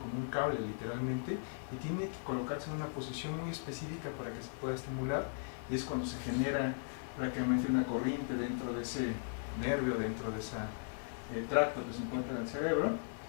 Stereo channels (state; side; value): silent; right; digital silence